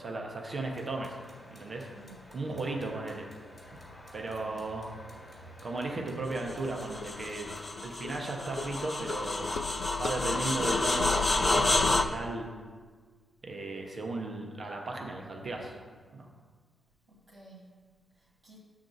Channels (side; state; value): both; normal; correlation 0.85